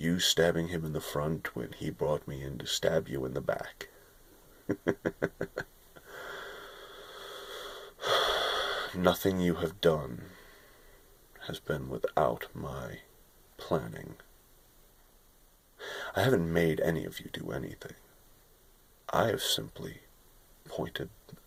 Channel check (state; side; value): identical; both; correlation 1.00